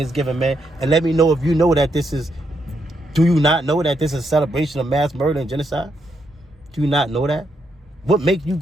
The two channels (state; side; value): normal; both; correlation 0.79